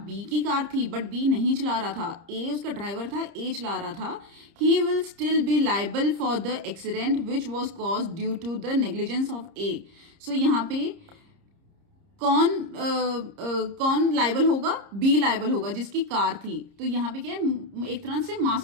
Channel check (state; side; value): late; left; 30 ms